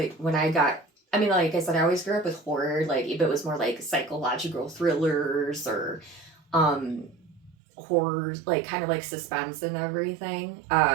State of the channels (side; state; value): left; drops out; at 7.6 s